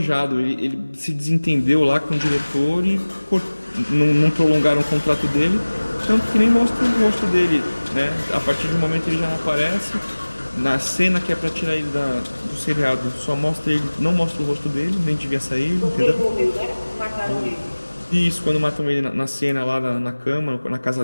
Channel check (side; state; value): both; inverted; correlation -1.00